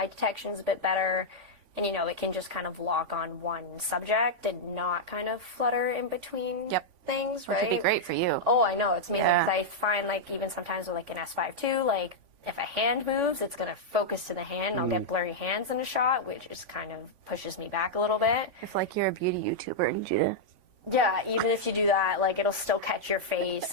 detection is a bit better. And, it can just kind of lock on one subject and not kind of flutter in between things, right? That'd be great for you. Oh, I know. It's amazing. Yeah. 'Cause I find, even sometimes with, an S5 II, if a hand moves, it's going to focus to the hand. And I'll get blurry hands in a shot, which just kind of pushes me back a little bit. It's you're a beauty YouTuber and you Yeah, even if you do that, it'll still catch your face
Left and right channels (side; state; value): left; late; 3.5 ms